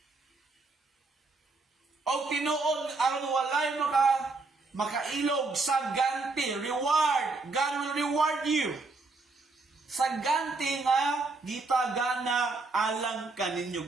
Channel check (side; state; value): left; quieter; 3.6 dB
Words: O tinuod, aron walay makailog sa ganti, reward. God will reward you. Sa ganti nga, gitagana alang